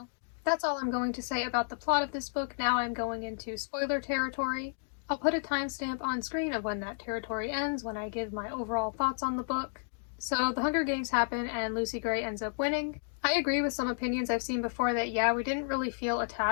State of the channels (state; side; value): silent; right; digital silence